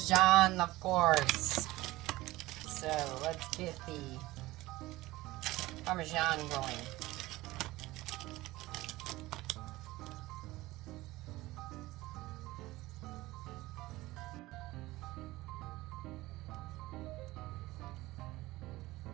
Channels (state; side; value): quieter; left; 18.6 dB